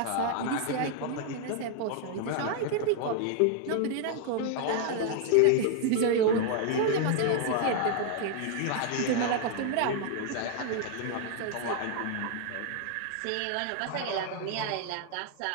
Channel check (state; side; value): different; both; correlation 0.00